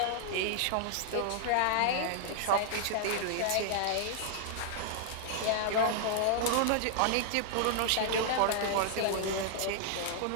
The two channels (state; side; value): different; both; correlation -0.01